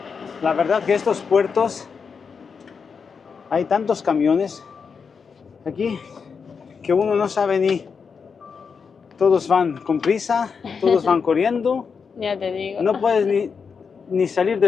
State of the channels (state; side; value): quieter; right; 5.8 dB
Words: La verdad que estos puertos hay tantos camiones aquí que uno no sabe ni. Todos van con prisa, todos van corriendo. Ya te digo. No puedes ni salir